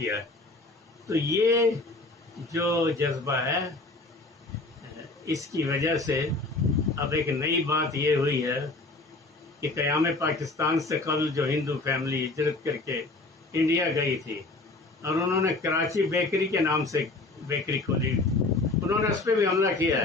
ہے. تو یہ جو جذبہ ہے اس کی وجہ سے اب ایک نئی بات یہ ہوئی ہے کہ قیام پاکستان سے قبل جو ہندو فیملی ہجرت کر کے انڈیا گئی تھی اور انہوں نے کراچی بیکری کے نام سے بیکری کھولی، انہوں نے اس پہ بھی حملہ کیا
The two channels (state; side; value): quieter; right; 3.2 dB